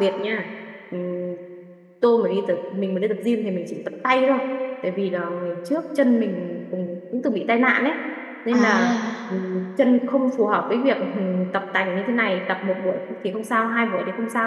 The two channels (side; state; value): both; identical; correlation 1.00